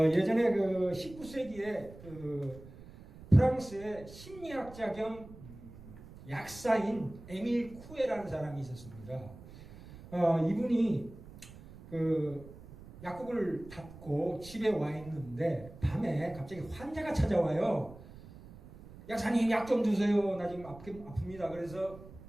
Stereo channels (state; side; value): noise; right; rumble, 17 dB below the sound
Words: 그 19세기에 그 프랑스의 심리학자 겸 약사인 에밀 쿠에라는 사람이 있었습니다. 이분이 그 약국을 닫고 집에 와 있는데 밤에 갑자기 환자가 찾아와요. 약사님 약 좀 주세요. 나 지금 아픕니다. 그래서